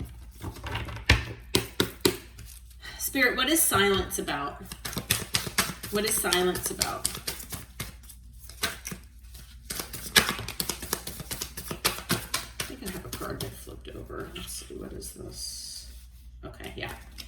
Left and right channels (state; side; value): identical; both; correlation 1.00